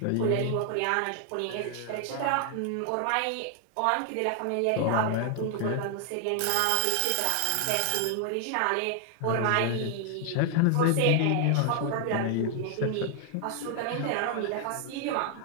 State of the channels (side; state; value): both; different; correlation 0.00